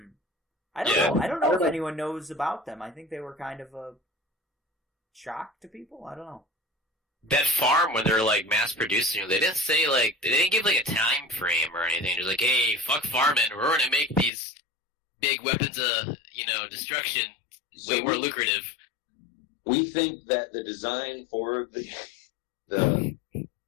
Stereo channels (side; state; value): right; drops out; at 14.3 s